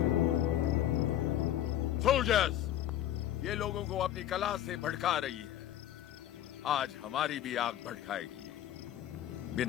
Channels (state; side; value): quieter; right; 12.1 dB